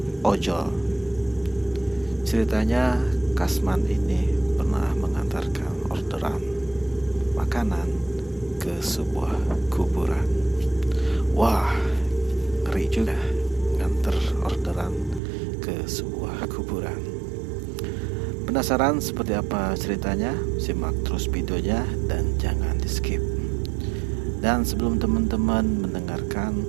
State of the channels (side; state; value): left; drops out; at 15.2 s